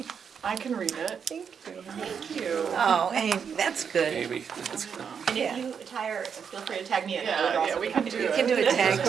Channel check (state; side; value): quieter; left; 6.9 dB